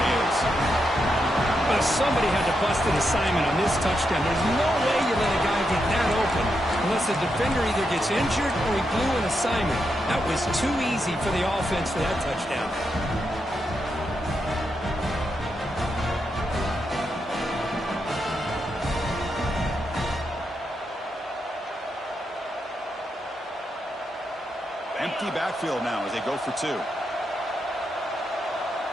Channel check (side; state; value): both; normal; correlation 0.84